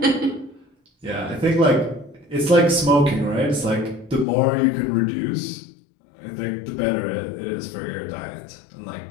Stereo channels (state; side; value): drops out; right; at 4.2 s